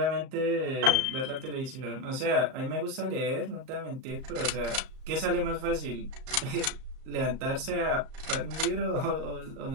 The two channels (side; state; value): left; late; 38 ms